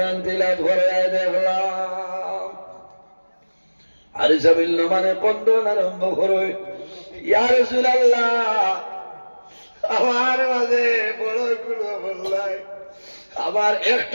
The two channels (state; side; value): inverted; both; correlation -1.00